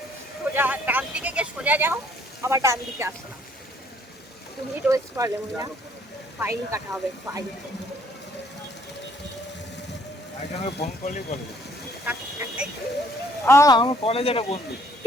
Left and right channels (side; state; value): both; normal; correlation 0.63